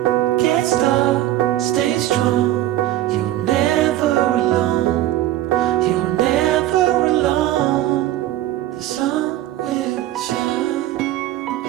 gets dark, stay strong. You're never alone. You're never alone. The sun will shine.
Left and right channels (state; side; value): quieter; left; 14.2 dB